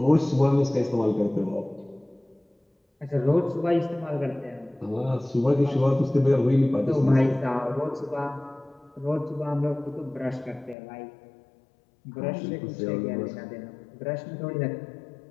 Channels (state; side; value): drops out; right; at 10.8 s